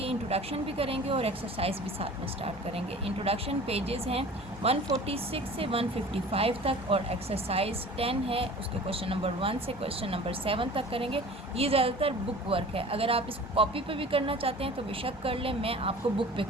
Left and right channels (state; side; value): normal; both; correlation 0.43